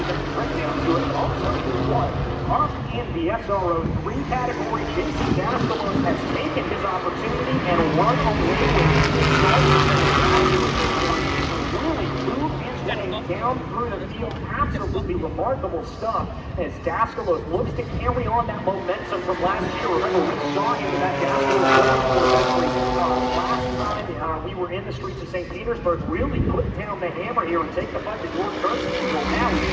get the straight down to it. Also, what? Up in the SRO 3 category, Jason Daskalos has taken his opportunity and run away with it. Really moved his way down through the field. Absolutely remarkable stuff as Daskalos looks to carry on that momentum from last year. Remember, we saw him in that Daskalos last time we were in the streets of St. Petersburg, really put down the hammer here and take the fight to George Kirsten. So now he's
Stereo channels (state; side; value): identical; both; correlation 1.00